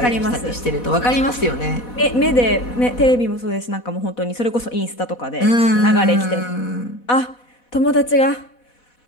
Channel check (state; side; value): late; right; 4.1 ms